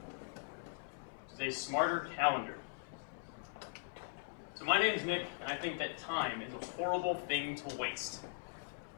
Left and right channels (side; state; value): right; silent; 51 dB below the other